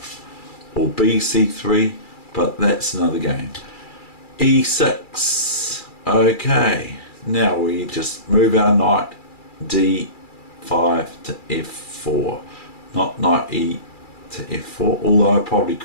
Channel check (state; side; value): late; right; 2.3 ms